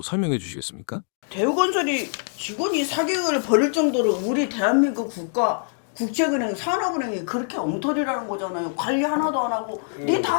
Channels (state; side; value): silent; right; digital silence